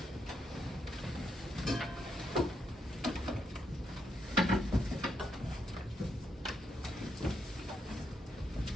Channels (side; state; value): both; normal; correlation 0.78